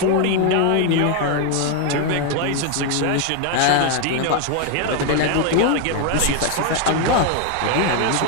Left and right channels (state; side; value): different; both; correlation 0.01